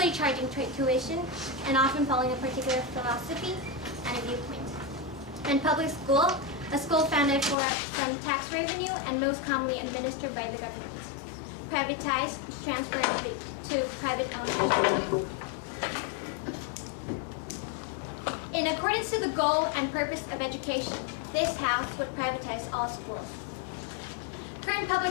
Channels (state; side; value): drops out; right; at 7.6 s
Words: charging tuition and often following a particular philosophy and a viewpoint. And public school, a school founded from tax revenue and most commonly administered by the government. Privatize, transfer to private ownership. In accordance to the goal and purpose of education, this House would privatize all schools. Current